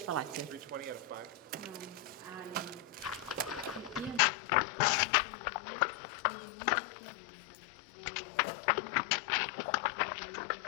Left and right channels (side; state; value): right; drops out; at 4.2 s